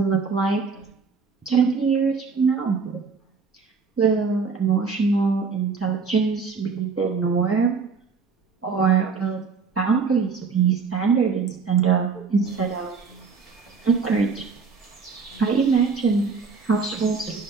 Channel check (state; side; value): quieter; left; 5.2 dB